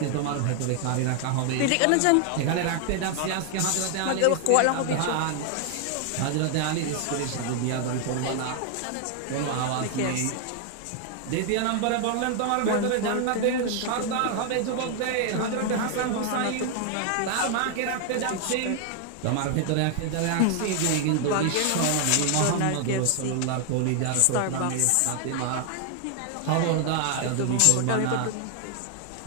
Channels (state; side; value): different; both; correlation 0.00